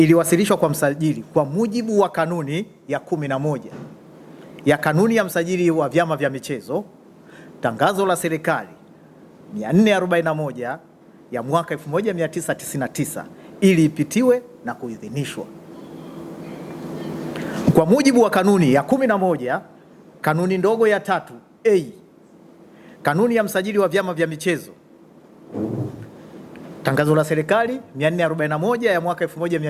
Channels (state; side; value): identical; both; correlation 1.00